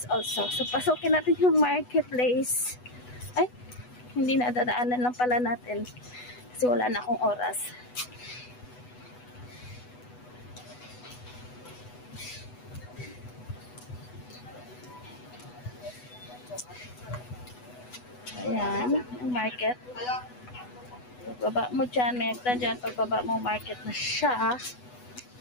also. So, pasukin natin yung marketplace. Ay, hindi na dadaanan lang pala natin. Kasi wala na akong oras. Ayan, ang market. Pagbaba mo dyan, may agtan dyan. Pagbaba mo, market na siya.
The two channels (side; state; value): right; late; 8.1 ms